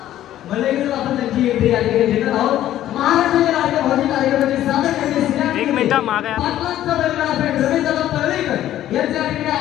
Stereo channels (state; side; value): quieter; right; 12.7 dB